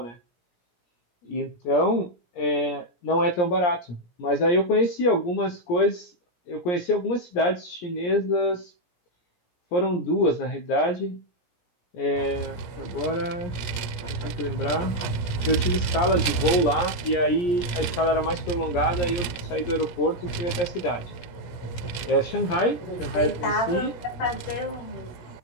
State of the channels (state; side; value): late; right; 17 ms